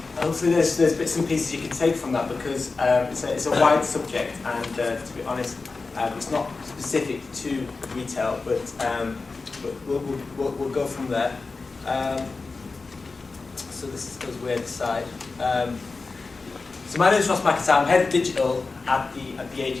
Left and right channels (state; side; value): quieter; right; 4.0 dB